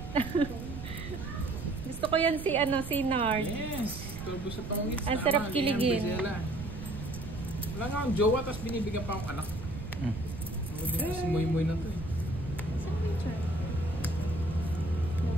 Gusto ko yan si Nard. Yes. Turbo sa pangungits. Ang sarap kiligin. Wala nga akong jowa, tapos binibigyan pa akong anak. Ako din kasi moy-moy na to eh. Saan ba yung char?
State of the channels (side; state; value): right; noise; rumble, 9 dB below the sound